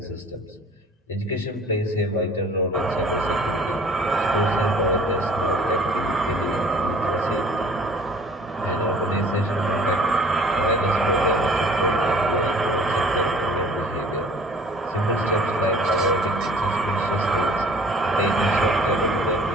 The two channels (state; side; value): normal; both; correlation 0.51